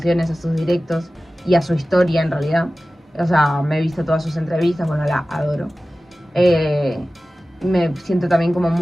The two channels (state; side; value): normal; both; correlation 0.96